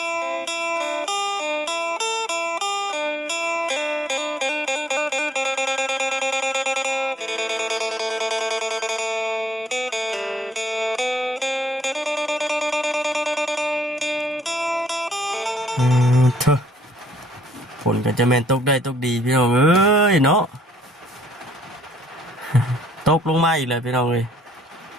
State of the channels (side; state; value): both; normal; correlation 0.67